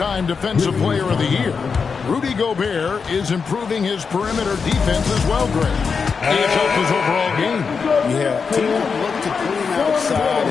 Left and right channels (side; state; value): right; quieter; 5.5 dB